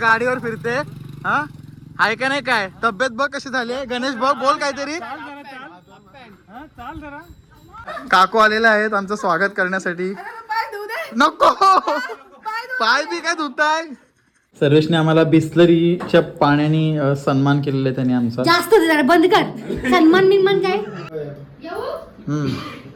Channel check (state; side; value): identical; both; correlation 1.00